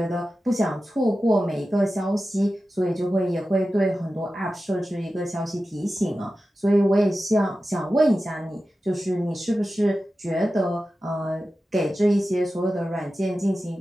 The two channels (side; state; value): both; normal; correlation 0.93